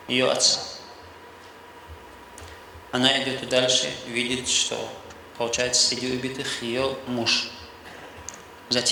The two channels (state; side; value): identical; both; correlation 1.00